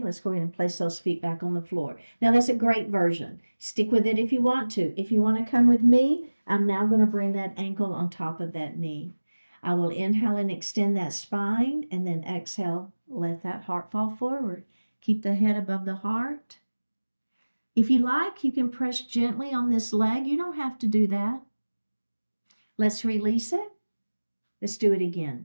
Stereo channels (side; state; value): both; inverted; correlation -1.00